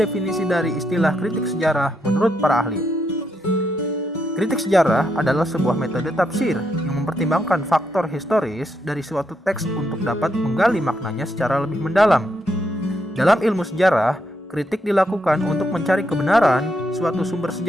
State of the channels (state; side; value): normal; both; correlation 0.79